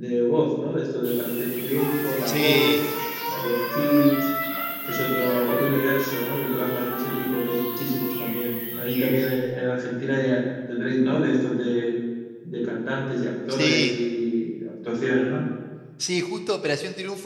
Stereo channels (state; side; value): identical; both; correlation 1.00